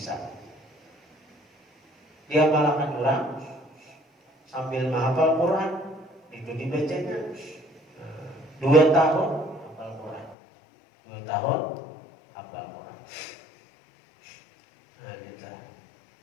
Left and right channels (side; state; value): right; drops out; at 10.4 s